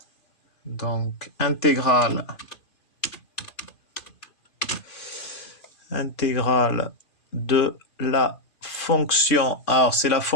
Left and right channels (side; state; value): right; late; 2.5 ms